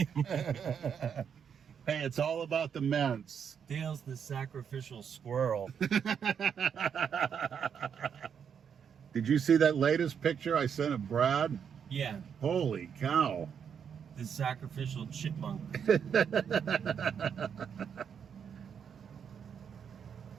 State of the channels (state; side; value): quieter; left; 7.5 dB